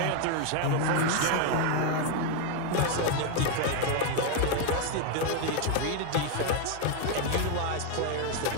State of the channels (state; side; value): different; both; correlation 0.01